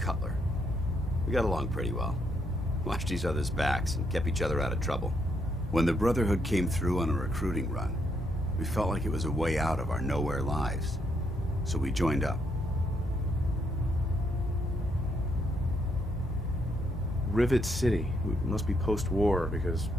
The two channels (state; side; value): normal; both; correlation 0.75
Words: We got along pretty well. Watched each other's backs and kept each other out of trouble. When the Brotherhood came through on a recruiting run, we felt like it was a way out of our nowhere lives. So we joined up. Rivet City. It must be post-war, because